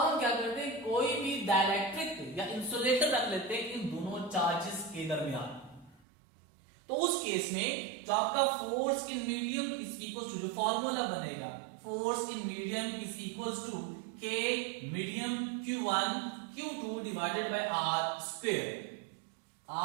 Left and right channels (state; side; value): drops out; left; at 6.0 s